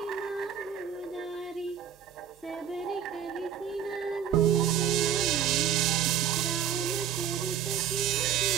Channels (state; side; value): quieter; left; 9.1 dB